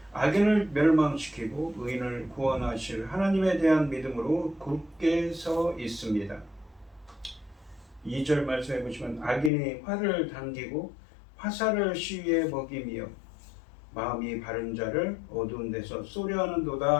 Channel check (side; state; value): right; drops out; at 9.5 s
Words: 악인을 멸망시키고 의인을 구원하실 하나님에 대한 믿음으로 굳게 서 있습니다. 2절 말씀해 보시면 악인이 활을 당기고 화살을 시위에 먹이며 마음이 바른 자를 어두운 데서 쏘려